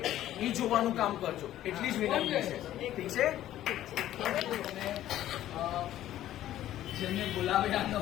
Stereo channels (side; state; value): right; quieter; 13.0 dB